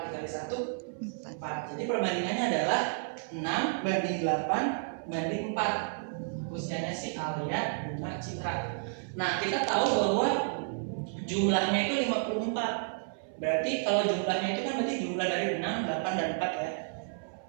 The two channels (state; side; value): silent; left; 57 dB below the other